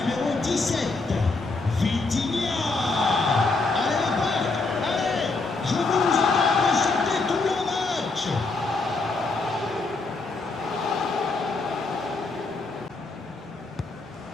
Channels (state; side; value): quieter; right; 3.7 dB